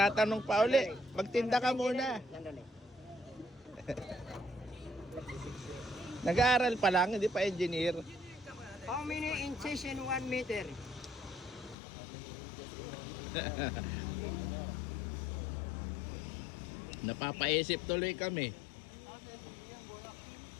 pa uli. Magtinda ka muna. Sandali. Nag-aaral pa lang, hindi pa engineer. How many inches in 1 meter? Napapaisip tuloy kami.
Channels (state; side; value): drops out; right; at 11.8 s